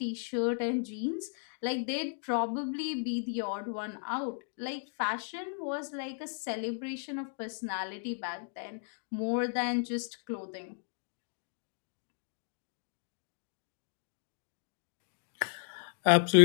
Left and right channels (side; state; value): right; silent; digital silence